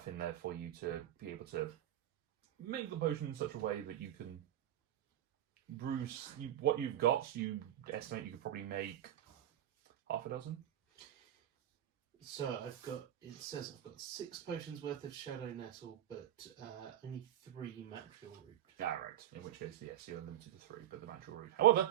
in there for you to be able to make the potion in such a way that you can brew what you've got. You estimate you could probably make half a dozen. So it says I've got 6 potions worth of shadow nettle, but only 3 material root. Ah, right. In which case, yes, you're limited to 3, but the natural root.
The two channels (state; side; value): quieter; left; 11.9 dB